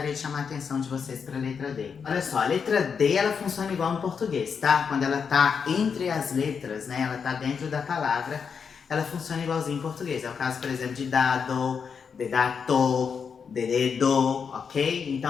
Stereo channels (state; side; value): quieter; right; 6.3 dB